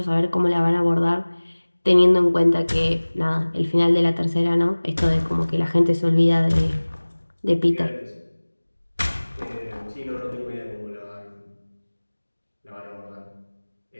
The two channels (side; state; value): both; inverted; correlation -1.00